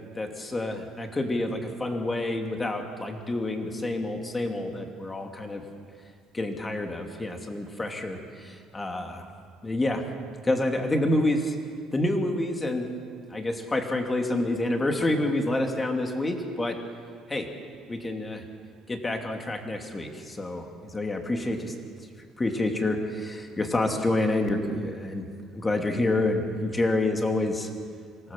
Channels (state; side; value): normal; both; correlation 0.82